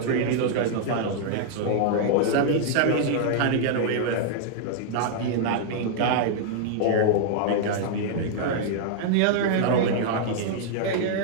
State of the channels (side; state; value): both; different; correlation -0.01